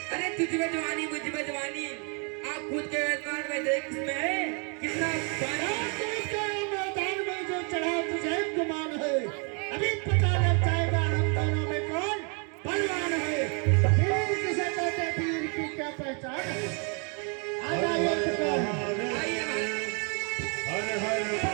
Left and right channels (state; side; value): quieter; left; 36.7 dB